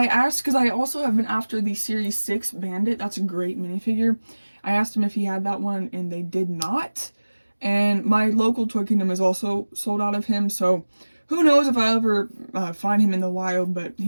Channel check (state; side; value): inverted; both; correlation -1.00